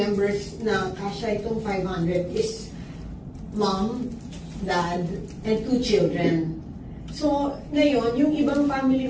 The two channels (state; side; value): identical; both; correlation 1.00